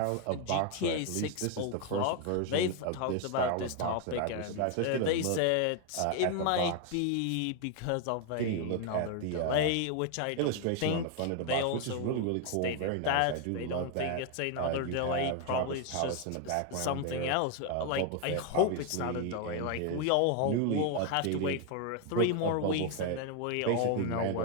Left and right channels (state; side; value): different; both; correlation 0.01